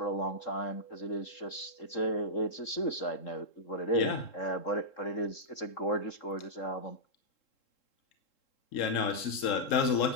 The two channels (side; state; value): right; late; 3.7 ms